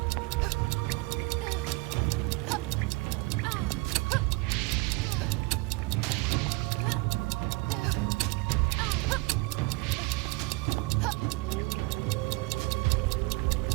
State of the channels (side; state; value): left; quieter; 24.5 dB